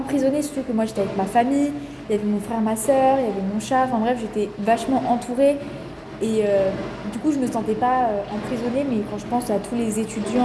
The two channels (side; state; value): both; identical; correlation 1.00